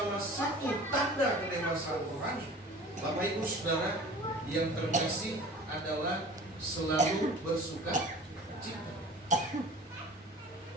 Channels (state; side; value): normal; both; correlation 0.42